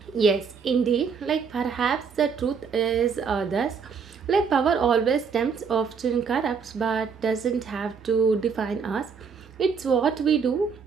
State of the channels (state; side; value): quieter; left; 5.9 dB